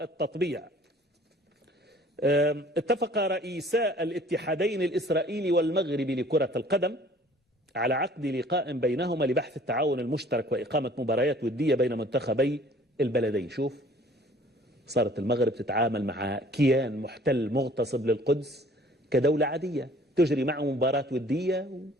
اتفق رئيسا الاتحادين الإسرائيلي والمغربي لكرة القدم على عقد لقاء بينهما لبحث التعاون المشترك وإقامة مباريات ودية بين منتخبي البلدين. شوف، صارت المغرب تتعامل مع كيان محتل مغتصب للقدس كدولة عادية، تجري معه مباراة ودية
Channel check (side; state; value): both; normal; correlation 0.53